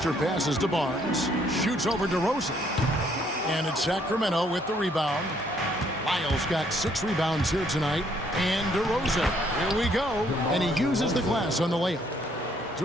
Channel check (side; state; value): both; normal; correlation 0.67